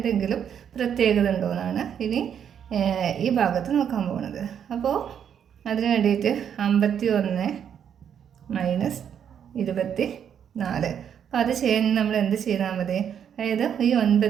പ്രത്യേകത ഉണ്ടോ എന്നാണ് ഇനി ഈ ഭാഗത്ത് നോക്കാൻ പോകുന്നത്. അപ്പോൾ അതിന് വേണ്ടിയിട്ട് 51 - 24. അപ്പോൾ അത് ചെയ്യാൻ നമ്മൾ എന്ത് ചെയ്താൽ മതി? അതായത് ഈ 9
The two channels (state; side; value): quieter; left; 8.5 dB